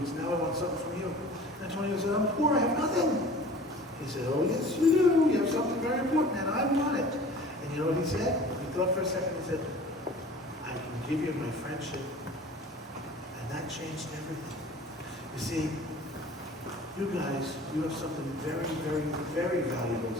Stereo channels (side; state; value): both; normal; correlation 0.44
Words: Now I want something from you." And Antonio said, "I'm poor, I have nothing." He said, "Oh yes you do. You have something very important, and I want it." And you know what he said? He thought for a second. He said, "I can give you my friendship." And that changed everything. You see, you guys, you have something very, very, very valuable